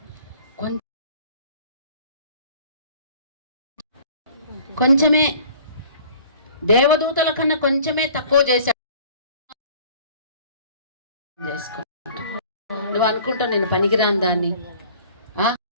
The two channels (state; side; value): inverted; both; correlation -0.51